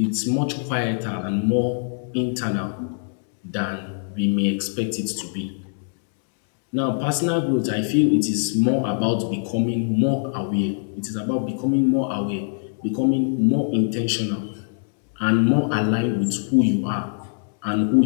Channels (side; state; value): right; silent; digital silence